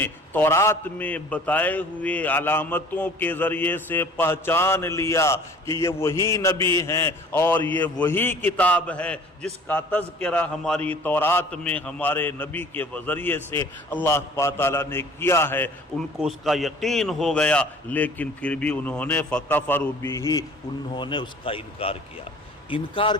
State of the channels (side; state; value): both; normal; correlation 0.49